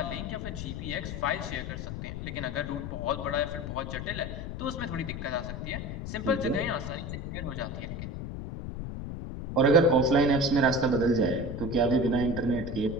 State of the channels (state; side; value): noise; left; rumble, 6 dB below the sound